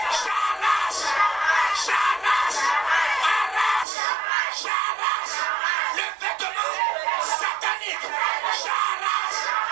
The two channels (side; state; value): left; drops out; at 3.9 s